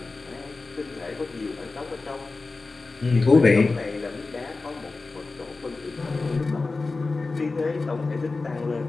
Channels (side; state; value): right; quieter; 3.7 dB